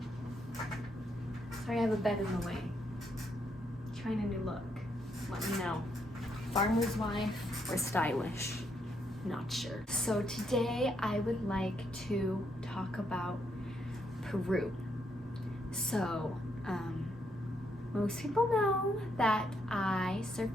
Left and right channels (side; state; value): both; normal; correlation 0.76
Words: Sorry, I have a bed in the way. Trying a new look. Let me know. Farmer's wife or stylish? Not sure. So today I would like to talk about Peru. So, most people know that I